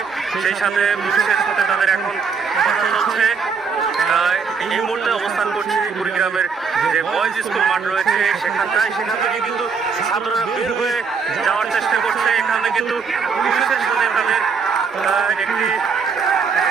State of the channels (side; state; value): left; quieter; 5.5 dB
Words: সেই সাথে পুলিশের সাথে তাদের এখন কথা চলছে। এই মুহূর্তে অবস্থান করছি কুড়িগ্রামের যে বয়েজ স্কুল মাঠ রয়েছে সেখান থেকে কিন্তু ছাত্ররা বের হয়ে যাওয়ার চেষ্টা করছে। এখানে কিন্তু পুলিশের সাথে তাদের একটি